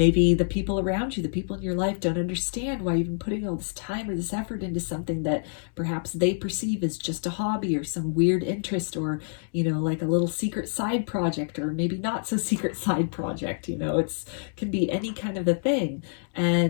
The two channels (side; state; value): right; silent; digital silence